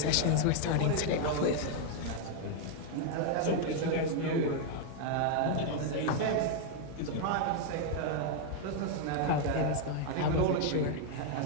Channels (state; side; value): different; both; correlation 0.00